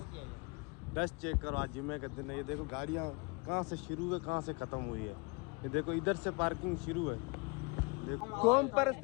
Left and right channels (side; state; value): right; quieter; 28.5 dB